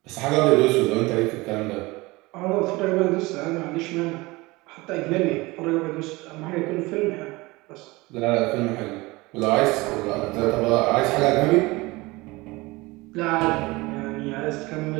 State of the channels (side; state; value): left; quieter; 22.2 dB